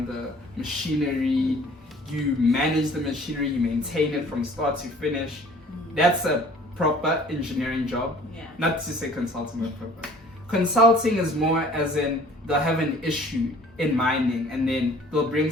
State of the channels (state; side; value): normal; both; correlation 0.51